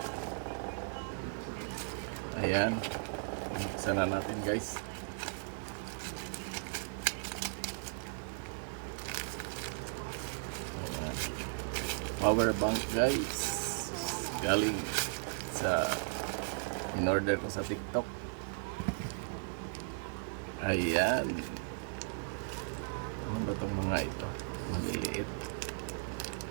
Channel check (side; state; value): left; silent; 53 dB below the other